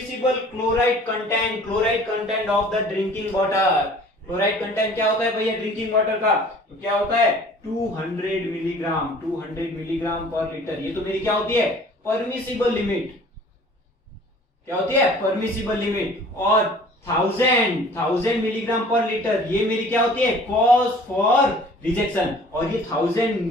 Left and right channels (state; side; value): normal; both; correlation 0.49